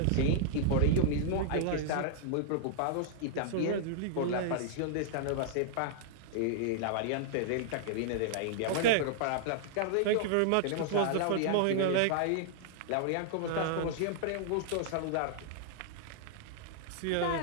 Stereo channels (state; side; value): different; both; correlation -0.01